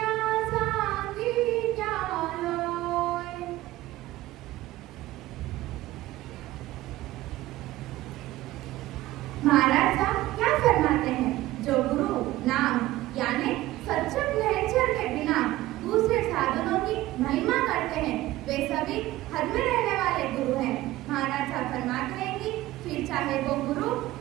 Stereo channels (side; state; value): left; quieter; 16.7 dB